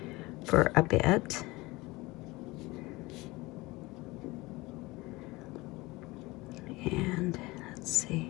for a bit. And let's see.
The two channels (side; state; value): right; quieter; 21.9 dB